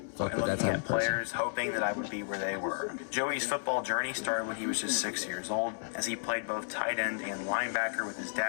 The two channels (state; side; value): silent; right; digital silence